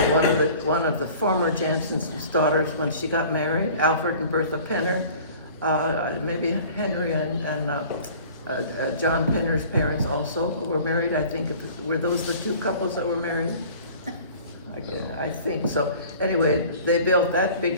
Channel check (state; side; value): inverted; both; correlation -0.46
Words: one of the former Jansen's daughters when she got married, Alfred and Bertha Penner. Maybe Henry and John Penner's parents also were married. I think were those the two couples that were married? I think so. Anyway, they built that big